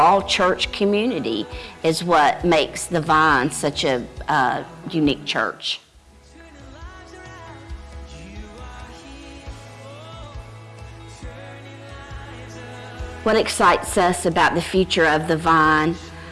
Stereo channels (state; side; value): identical; both; correlation 1.00